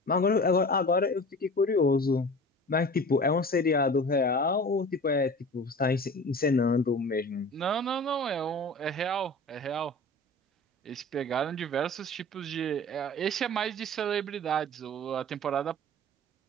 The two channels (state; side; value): normal; both; correlation 0.38